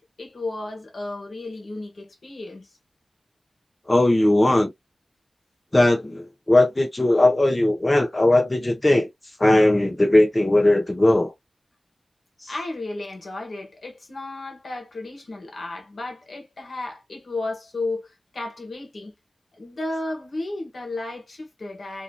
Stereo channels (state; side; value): normal; both; correlation 0.98